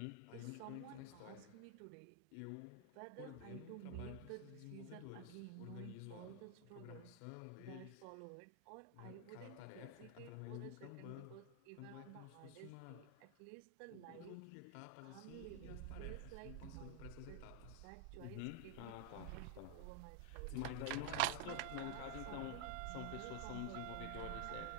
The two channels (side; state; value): both; different; correlation 0.00